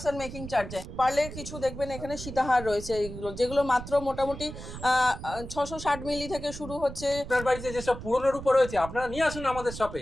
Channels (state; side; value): noise; right; rumble, 10 dB below the sound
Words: মেকিং চার্জে। পারলে কিছু দেখবেন এখানে সীতাহার রয়েছে এইগুলো, যেগুলো মাত্র মোটামুটি 660 মিলি থেকে শুরু হচ্ছে। আপনার বাড়িতে যেসব পুরনো রূপো রয়েছে আপনারা নিয়ে আসুন আমাদের